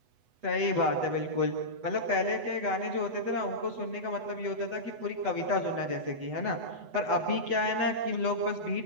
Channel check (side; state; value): left; late; 8.1 ms